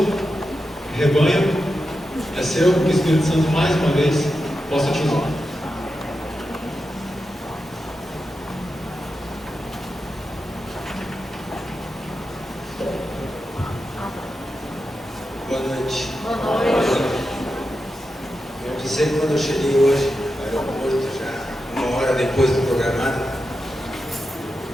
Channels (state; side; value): normal; both; correlation 0.89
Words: rebanho, é seu, que o Espírito Santo mais uma vez possa te usar. Boa noite. Boa noite. Eu disse que quando eu cheguei hoje no aeroporto, já uma hora depois do programado,